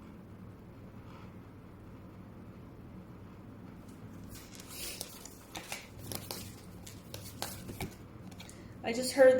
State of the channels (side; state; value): both; identical; correlation 1.00